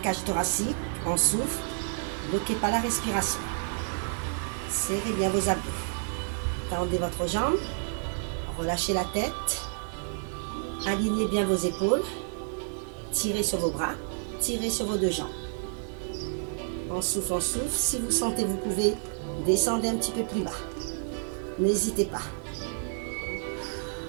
thoracique. On souffle. Bloquez pas la respiration. Serrez bien vos abdos. Tendez votre jambe. Relâchez la tête. Alignez bien vos épaules. Tirez sur vos bras. Tirez sur vos deux jambes. On souffle, on souffle. Si vous sentez, vous pouvez descendre un petit peu plus bas. N'hésitez pas.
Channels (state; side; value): silent; left; digital silence